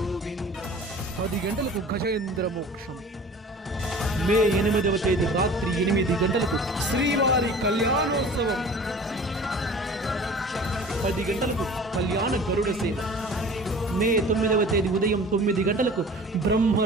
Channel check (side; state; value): both; normal; correlation 0.43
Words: 10 గంటలకు గజేంద్ర మోక్షం. మే 8వ తేదీ రాత్రి 8 గంటలకు శ్రీవారి కళ్యాణోత్సవం. 10 గంటలకు కళ్యాణ గరుడ సేవ. మే 9వ తేదీ ఉదయం 9 గంటలకు